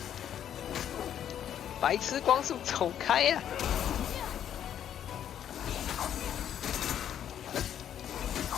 白痴光速，走开呀！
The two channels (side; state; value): right; quieter; 9.9 dB